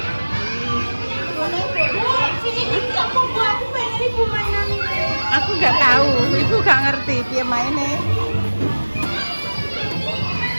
Aku gak tahu, ibu gak ngerti piye maine.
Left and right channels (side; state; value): both; inverted; correlation -1.00